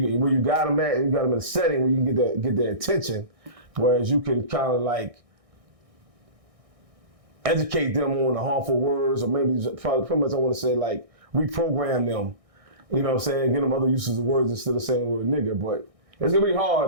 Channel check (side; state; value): left; late; 1.6 ms